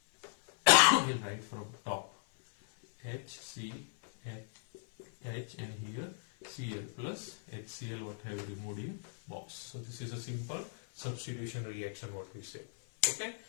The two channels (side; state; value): right; silent; 53 dB below the other